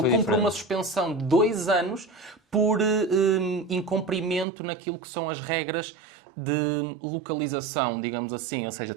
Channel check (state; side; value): drops out; left; at 4.5 s